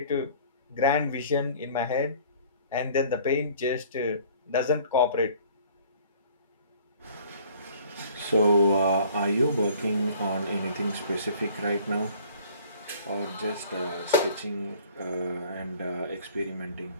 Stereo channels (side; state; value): both; inverted; correlation -0.52